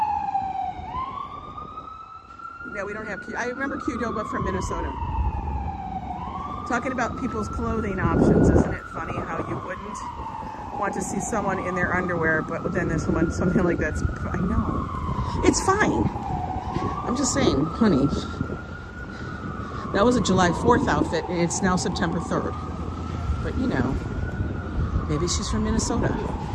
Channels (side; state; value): both; identical; correlation 1.00